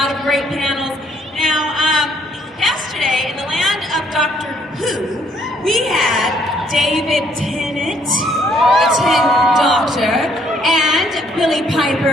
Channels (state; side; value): normal; both; correlation 0.66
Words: of great panels. Now, yesterday, in the land of Doctor Who, we had David Tennant, the 10th Doctor, and Billie